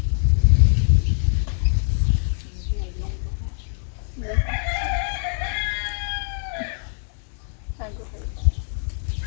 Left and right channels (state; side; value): silent; right; digital silence